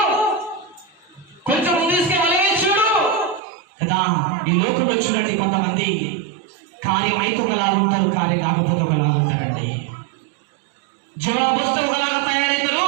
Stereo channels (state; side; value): drops out; left; at 3.4 s